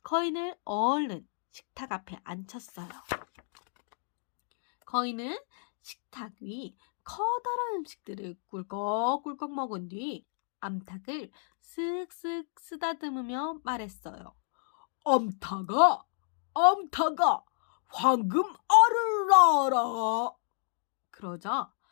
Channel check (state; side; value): silent; right; digital silence